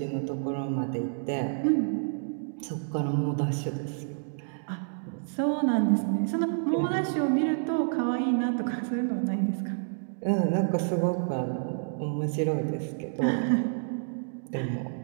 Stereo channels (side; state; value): left; silent; digital silence